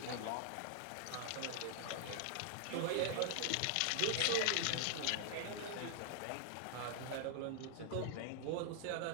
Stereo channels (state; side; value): different; both; correlation -0.01